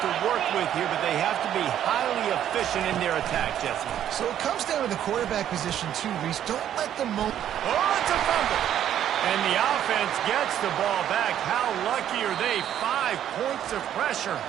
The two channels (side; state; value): left; quieter; 10.6 dB